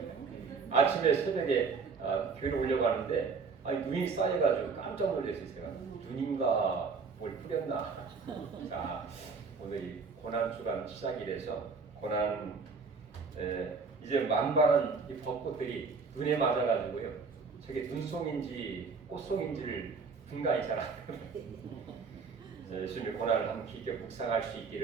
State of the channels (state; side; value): quieter; left; 4.9 dB